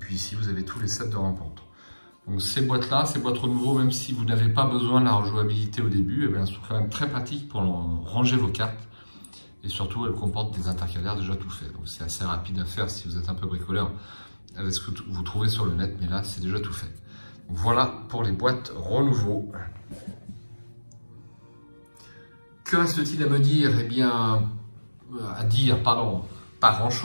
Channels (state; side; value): inverted; both; correlation -1.00